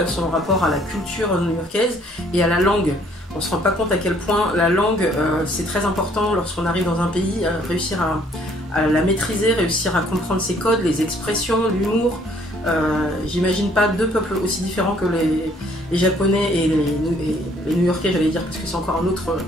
son rapport à la culture new-yorkaise et à la langue. On ne se rend pas compte à quel point la langue c'est très important lorsqu'on arrive dans un pays, réussir à la maîtriser, réussir à comprendre ses codes, les expressions, l'humour. J'imagine pas deux peuples aussi différents que les Japonais et les New-Yorkais, j'allais dire, parce que c'est encore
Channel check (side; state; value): both; normal; correlation 0.62